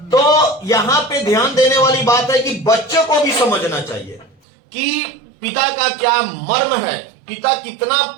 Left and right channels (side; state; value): left; drops out; at 4.4 s